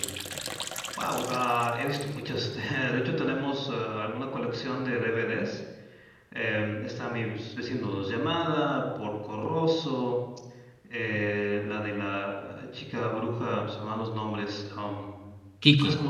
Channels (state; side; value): identical; both; correlation 1.00